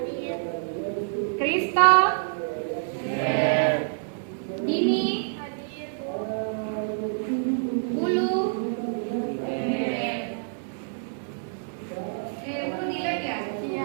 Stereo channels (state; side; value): silent; left; digital silence